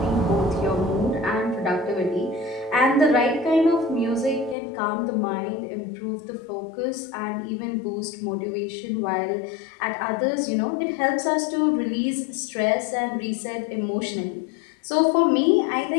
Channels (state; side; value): drops out; right; at 4.5 s